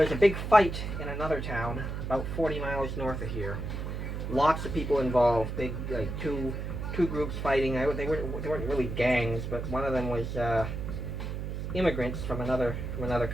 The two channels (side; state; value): right; noise; hum, 4 dB below the sound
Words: a big fight in another town about 40 miles north of here. Lots of people involved, big, like two groups fighting. They weren't really gangs, but one of them was immigrants from another